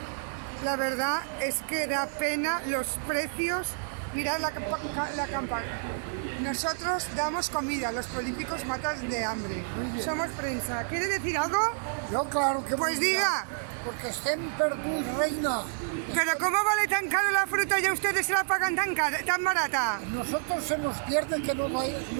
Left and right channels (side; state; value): left; silent; digital silence